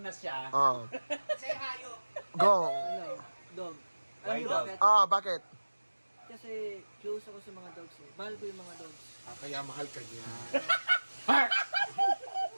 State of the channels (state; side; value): inverted; both; correlation -1.00